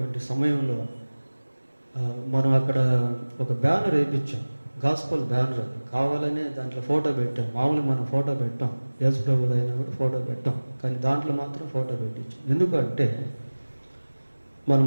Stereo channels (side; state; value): both; inverted; correlation -1.00